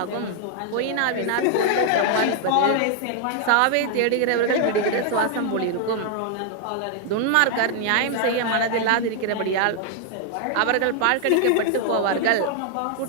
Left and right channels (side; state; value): both; different; correlation 0.00